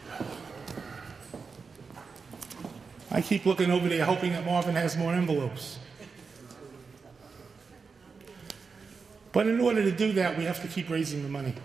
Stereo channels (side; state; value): left; quieter; 5.0 dB